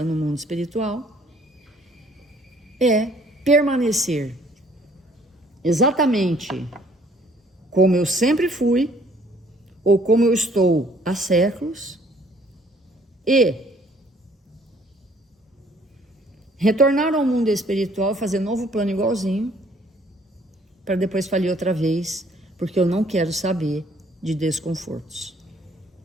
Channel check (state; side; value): normal; both; correlation 0.60